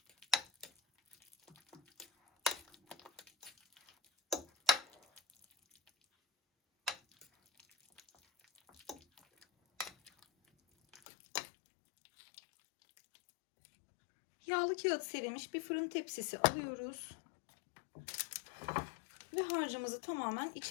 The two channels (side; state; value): right; drops out; at 11.0 s